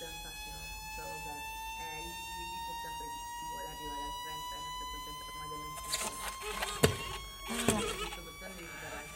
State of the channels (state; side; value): identical; both; correlation 1.00